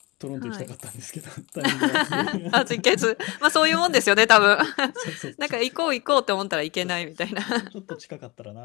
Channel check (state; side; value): quieter; right; 23.2 dB